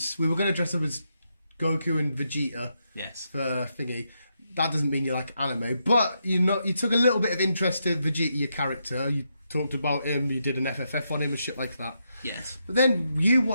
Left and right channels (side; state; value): both; inverted; correlation -0.82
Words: we were going to dress up as Goku and Vegeta. Yes. For thingy. That doesn't mean you like anime, but you took a little bit of interest in Vegeta, your character. You talked about him, you did an FFF on him and shit like that. Yes. But then you